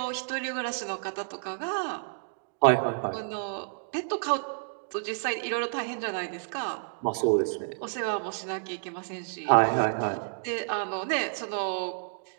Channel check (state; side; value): silent; left; digital silence